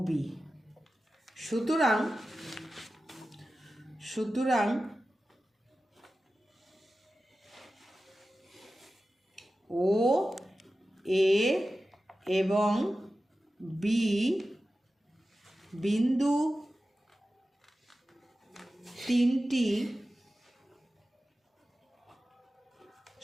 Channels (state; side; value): normal; both; correlation 0.94